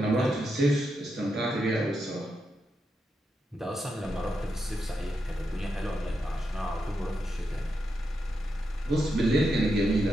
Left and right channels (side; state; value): both; normal; correlation 0.85